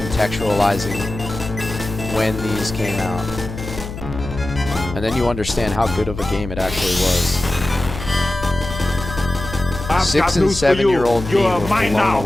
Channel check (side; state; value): left; noise; hum, 9 dB below the sound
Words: when these came out. And then you understand how good of a game it actually was. 6 and 7-year-old me were blown